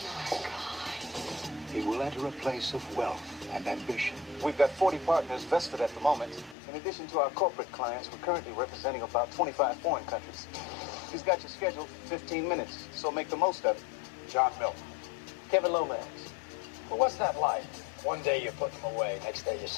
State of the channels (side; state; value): right; drops out; at 6.6 s